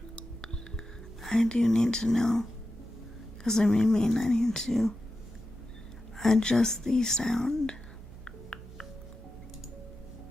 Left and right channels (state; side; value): noise; right; hum, 17 dB below the sound